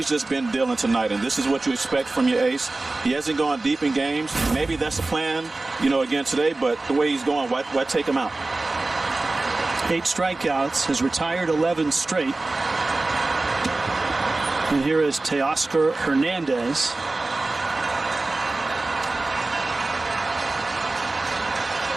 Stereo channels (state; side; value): quieter; left; 3.2 dB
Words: just been dealing tonight. And this is what you expect from your ace. He hasn't gone deep in games. Maybe that's the plan, again today, but the way he's going, why take him out? 8 strikeouts, has retired 11 straight. And here is Teoscar Hernandez.